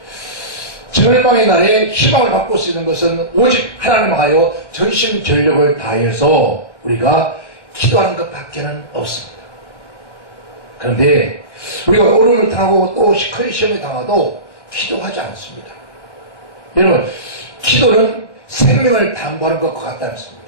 절망의 날에 희망을 바꿀 수 있는 것은 오직 하나님 하여 전심전력을 다해서 우리가 기도하는 것밖에는 없습니다. 그런데 우리가 어려움을 당하고 또 큰 시험을 당하도 기도하지 않습니다. 여러분, 기도는 생명을 담보하는 것과 같다는 것입니다.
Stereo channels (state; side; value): late; right; 1.1 ms